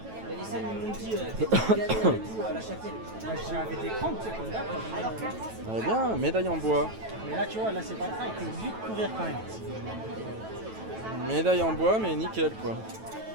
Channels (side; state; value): left; late; 9.2 ms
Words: scènes m'ont dit à la Châtelle. J'avais des crampes, tu sais, comme là. Alors clairement, c'est Elle est bien, médaille en bois. Mais là, tu vois, là, c'est pas le cas, il peut vite courir quand même. Médaille en bois, mais nickel quoi.